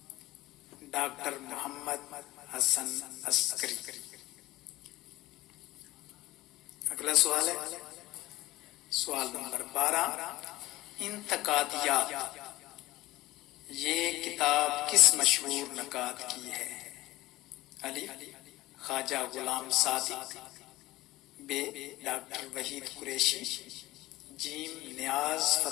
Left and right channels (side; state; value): right; quieter; 17.6 dB